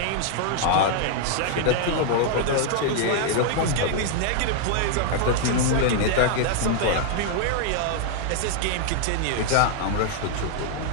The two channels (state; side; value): different; both; correlation 0.00